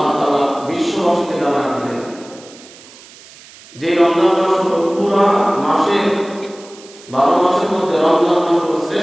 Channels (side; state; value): right; noise; hiss, 21 dB below the sound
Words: তাআলা বিশ্ববাসীকে জানান দিলেন যে রমজান মাস হলো পুরা মাসের 12 মাসের মধ্যে রমজান মাস হলো